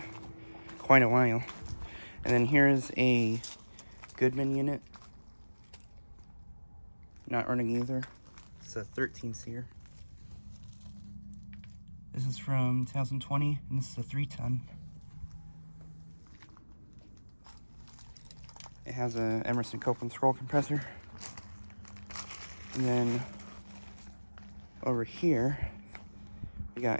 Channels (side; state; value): both; inverted; correlation -1.00